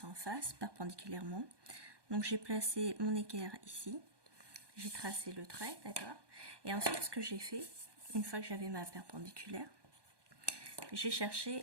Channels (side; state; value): left; late; 1.2 ms